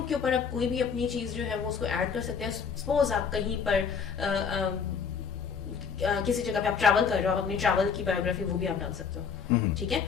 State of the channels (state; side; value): quieter; right; 6.3 dB